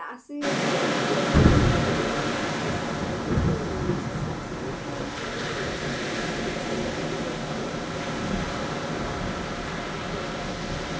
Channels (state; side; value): identical; both; correlation 1.00